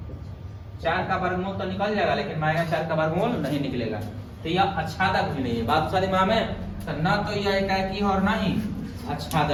4 का वर्गमूल तो निकल जाएगा, लेकिन -4 का वर्गमूल नहीं निकलेगा तो यह आच्छादक भी नहीं है। बात सारी माँ में तो न तो यह एकाकी और ना ही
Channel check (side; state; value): both; identical; correlation 1.00